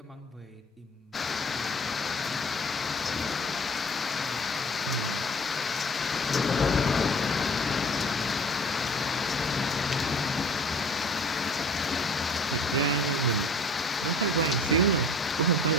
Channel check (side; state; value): both; normal; correlation 0.47